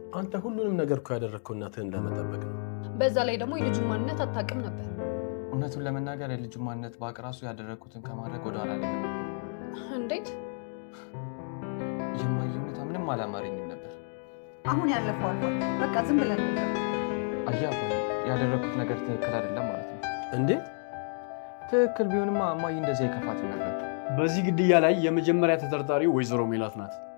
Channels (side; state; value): right; silent; 58 dB below the other